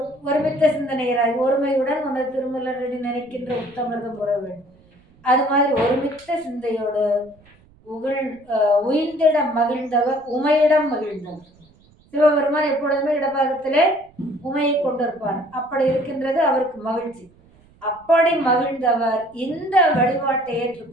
சிந்தனையராய் ஒருமையுடன் அந்த திருமலரடி நினைக்கின்ற உத்தமிர்தம் உற வேண்டும். அது மாதிரி ஒருமித்த சிந்தையோடு உயிர்ந்திட மகிழ்ந்தவர் உமையிடம் மகிழ்ந்தவர். சிவபெருமான் எப்பொழுதுமே இடபாகத்திலே உமையை கொண்டிருப்பார். அப்படி இருக்கின்றது அவருக்கு மகிழ்ச்சி. அப்படி மகிழ்ந்தவர் இந்த வழிபாட்டை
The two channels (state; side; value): noise; right; rumble, 30 dB below the sound